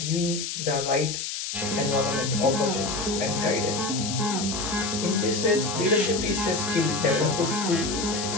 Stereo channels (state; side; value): noise; left; hiss, 4 dB below the sound